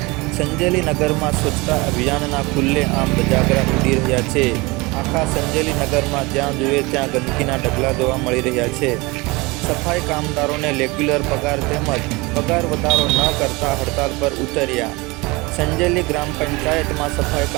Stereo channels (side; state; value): left; quieter; 24.4 dB